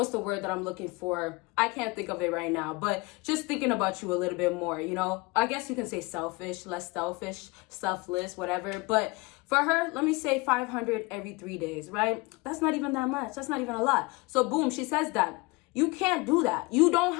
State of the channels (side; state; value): right; quieter; 25.4 dB